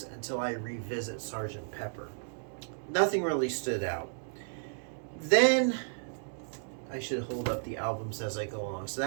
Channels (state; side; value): silent; left; digital silence